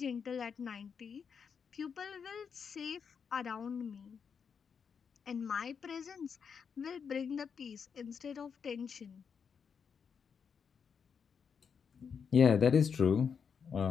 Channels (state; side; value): quieter; right; 6.5 dB